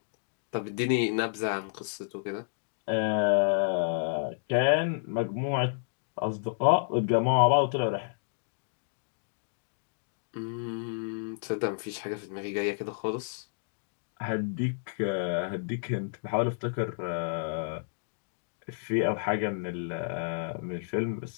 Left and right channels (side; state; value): right; silent; digital silence